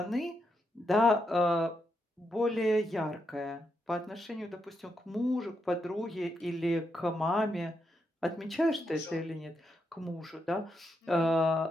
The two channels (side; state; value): both; normal; correlation 0.82